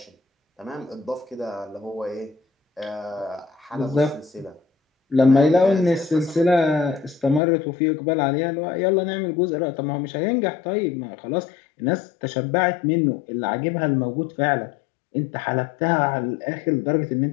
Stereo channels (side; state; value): right; drops out; at 7.4 s